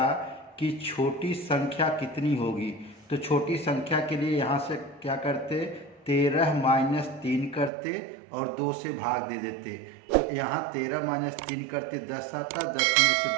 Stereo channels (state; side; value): drops out; left; at 7.7 s